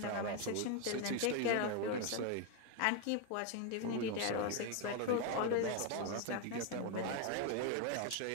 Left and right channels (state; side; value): different; both; correlation 0.01